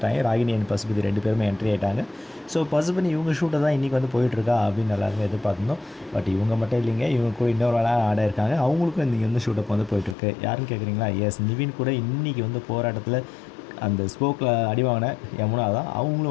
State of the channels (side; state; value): right; drops out; at 10.2 s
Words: ராகினி அண்ட் பசுபதி 2 பேருமே என்ட்ரி ஆகிட்டாங்க. ஸோ பசுபதி இவங்க ஷூட்டை தான் இன்றைக்கி வந்து போயிட்டுருக்கா அப்படின்னு எல்லாருமே எதிர்பார்த்துருந்தோம். பட் இவங்க மட்டும் இல்லைங்க, இவங்க கூட இன்னொரு வேலை ஆட இருக்காங்க. அவங்களுக்கும் இன்றைக்கி வந்து ஷூட்டப் வந்து போயிட்டுருக்கு. யாருன்னு கேட்குறீங்களா? எஸ், நிவின் கூட இன்றைக்கி வந்து போராட்டத்தில் அந்த ஸ்போக்கில் அடி வாங்கின யமுனா தான்.